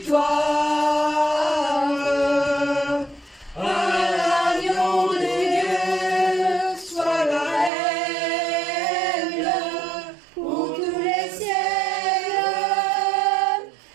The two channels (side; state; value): left; drops out; at 7.7 s